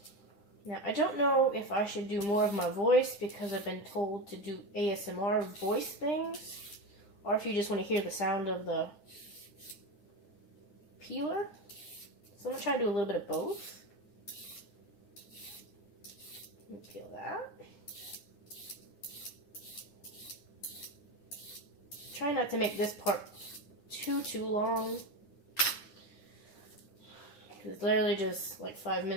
Now, I don't know if I should do more of my voice because I've been told to do ASMR voice things, or if you just want to hear the sound of the peeler. So I'm going to try to do a little bit of both. Peel that. Try not to make this part too long. It's literally just like 5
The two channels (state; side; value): late; right; 10 ms